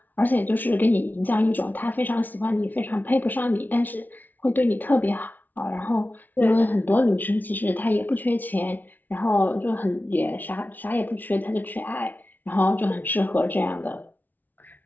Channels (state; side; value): late; right; 0.082 ms